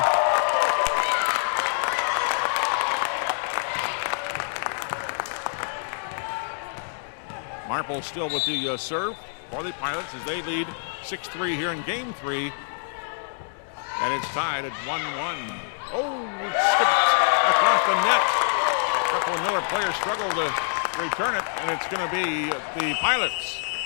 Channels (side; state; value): right; silent; digital silence